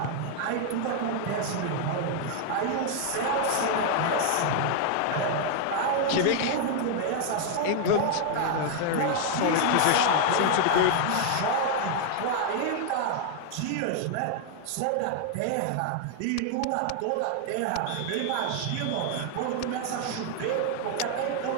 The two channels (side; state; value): both; different; correlation 0.00